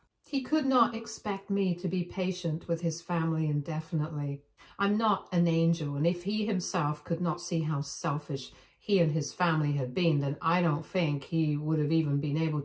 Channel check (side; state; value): both; identical; correlation 1.00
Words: He could not expect me to be patient with his family indefinitely. I'm not an angel, and if he himself could not see how selfish he and his family had been, then I don't think he would have even been able